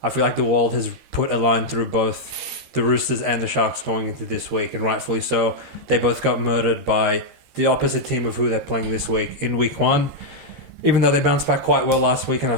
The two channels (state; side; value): late; left; 13 ms